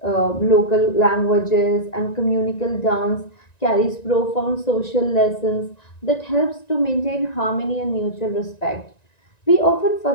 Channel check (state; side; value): late; right; 1.9 ms